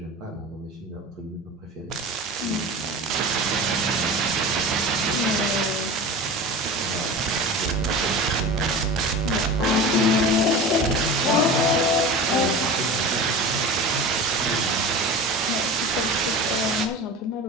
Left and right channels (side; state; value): both; normal; correlation 0.33